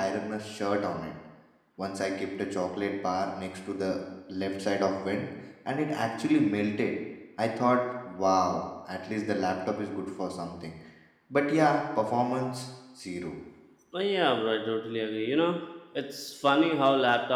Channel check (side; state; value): both; identical; correlation 1.00